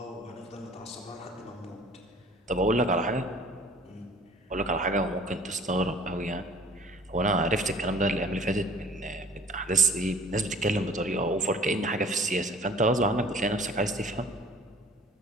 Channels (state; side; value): normal; both; correlation 0.50